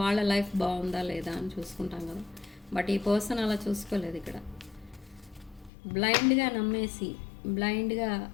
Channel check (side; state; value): right; drops out; at 5.7 s